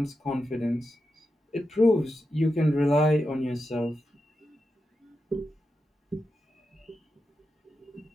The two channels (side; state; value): both; normal; correlation 0.88